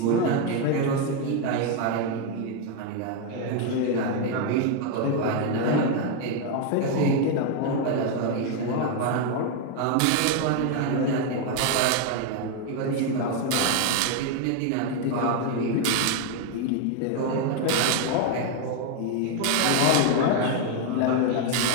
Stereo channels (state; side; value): different; both; correlation 0.01